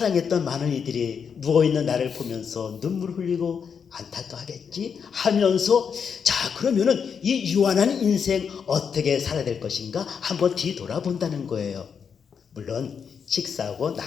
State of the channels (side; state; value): right; quieter; 6.7 dB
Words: 많은 이들이 누워있는 나를 보면서 눈물 흘리고 안타까워하겠지 하면서 자 그러면은 이 유한한 인생 어떻게 살아야 될 것인가 한번 뒤돌아본다는 거예요. 물론 식사하고